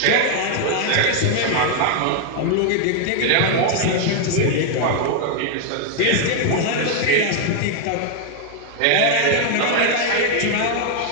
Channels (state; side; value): different; both; correlation 0.00